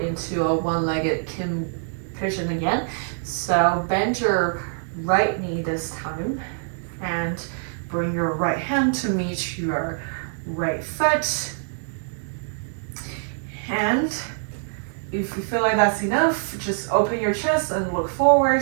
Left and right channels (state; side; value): silent; left; digital silence